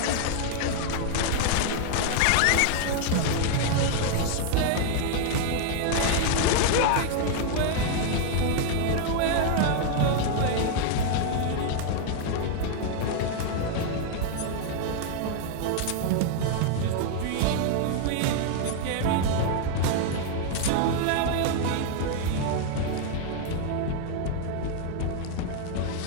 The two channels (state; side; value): different; both; correlation 0.00